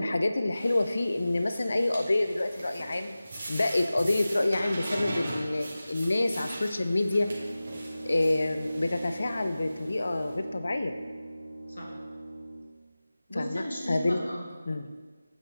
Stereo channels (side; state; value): both; inverted; correlation -0.97